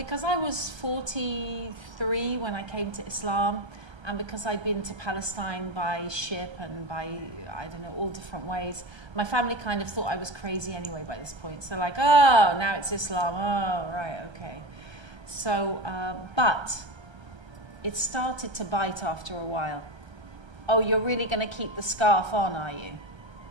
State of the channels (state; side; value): late; left; 1.3 ms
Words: I was 43 when I came to Islam, and because I'd been to Palestine by ship and by, I don't know, all different ways, my family kind of thought I was crazy anyway by this point. So like, oh, now it's Islam. Oh, right, okay. So, but it started to bite after a while. Oh, you're really going to keep the scarf on, are you?